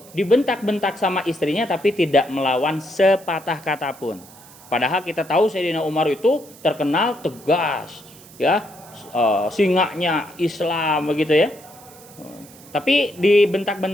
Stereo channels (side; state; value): right; noise; hiss, 22 dB below the sound